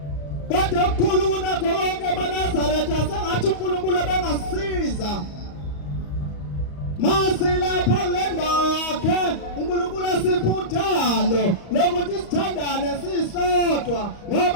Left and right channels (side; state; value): right; late; 35 ms